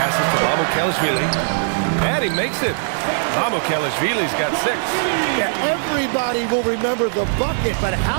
to Mamukelashvili. And he makes it. Mamukelashvili's got 6. Yeah, everybody will remember the bucket, but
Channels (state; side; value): silent; left; digital silence